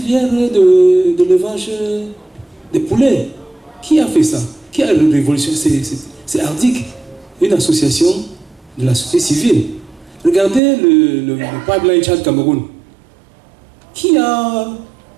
de l'élevage des poulets. Qui a fait ça? Qui a révolutionné? C'est Ardic, une association de la société civile. Regardez le pipeline Tchad-Cameroun. Qui a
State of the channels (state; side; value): drops out; left; at 10.6 s